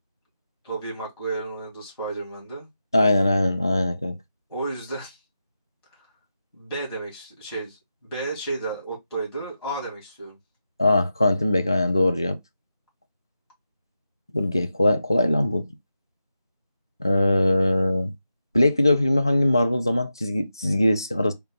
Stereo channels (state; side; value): inverted; both; correlation -0.89